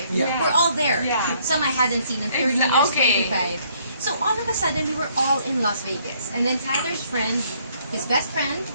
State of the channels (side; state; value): both; inverted; correlation -0.66